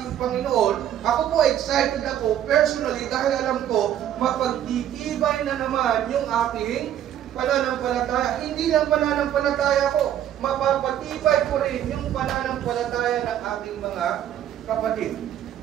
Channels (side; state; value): left; quieter; 10.9 dB